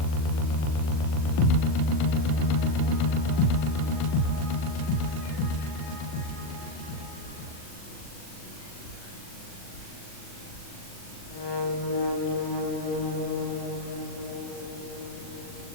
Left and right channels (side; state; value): right; late; 40 ms